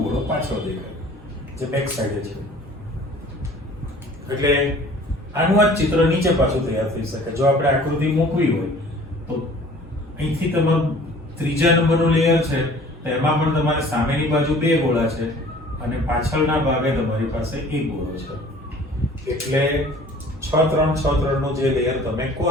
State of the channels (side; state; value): both; normal; correlation 0.49